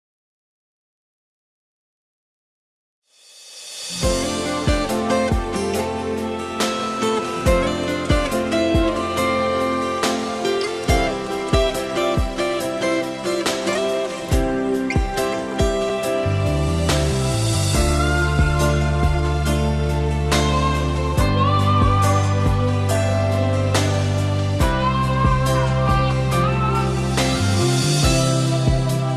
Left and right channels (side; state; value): both; identical; correlation 1.00